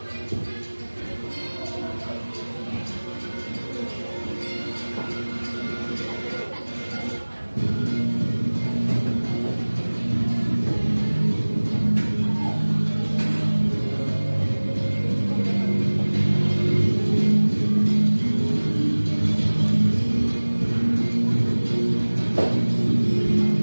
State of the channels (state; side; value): inverted; both; correlation -1.00